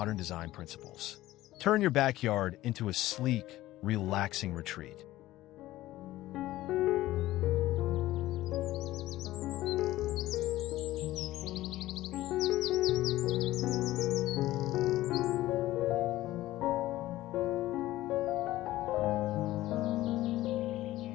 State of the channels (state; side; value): quieter; right; 16.0 dB